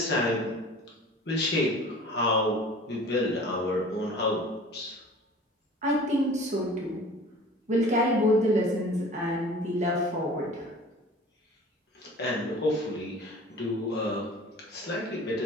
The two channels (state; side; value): normal; both; correlation 0.44